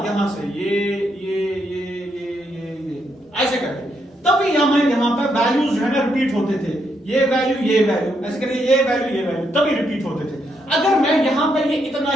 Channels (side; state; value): both; normal; correlation 0.78